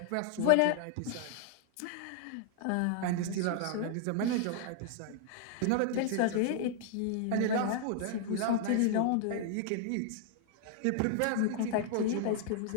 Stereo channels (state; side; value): different; both; correlation 0.00